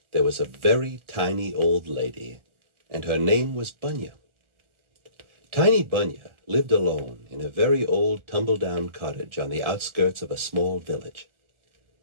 there was a very tiny old lady, and her name was Bunya. Tiny Bunya lived alone in a very old tumble-down cottage on the outskirts of a small village.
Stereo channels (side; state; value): left; late; 1.4 ms